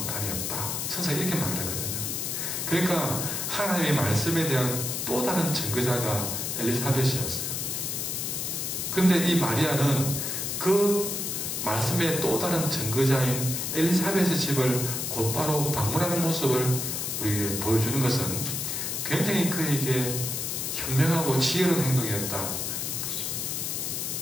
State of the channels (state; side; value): noise; left; hiss, 2 dB below the sound